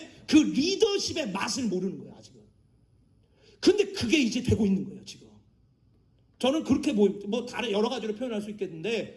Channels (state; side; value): identical; both; correlation 1.00